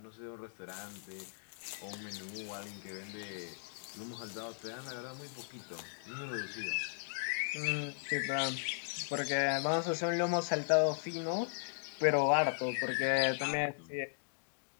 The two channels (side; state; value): right; silent; digital silence